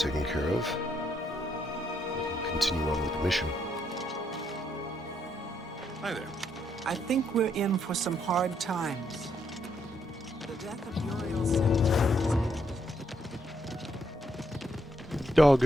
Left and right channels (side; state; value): both; normal; correlation 0.75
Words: care of, we can continue on with the mission. Hi there. I think we're in for some hard times. The death of Uriel Sin-